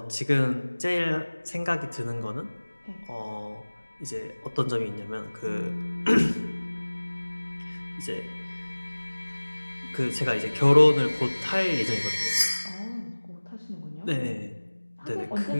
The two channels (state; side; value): inverted; both; correlation -1.00